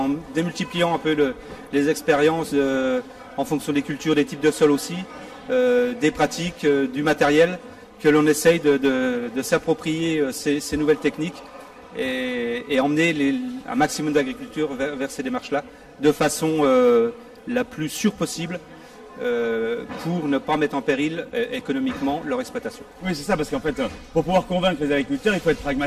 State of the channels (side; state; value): both; identical; correlation 1.00